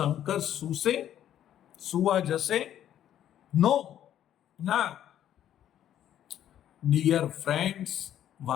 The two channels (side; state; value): right; quieter; 11.0 dB